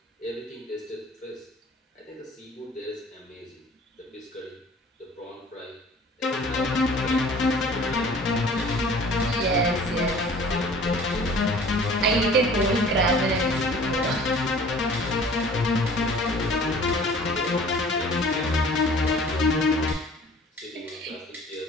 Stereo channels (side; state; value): both; normal; correlation 0.48